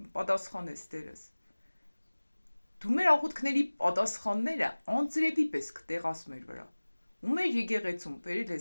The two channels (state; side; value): inverted; both; correlation -1.00